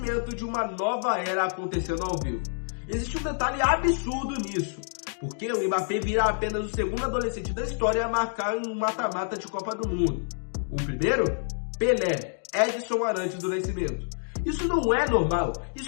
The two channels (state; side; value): silent; right; digital silence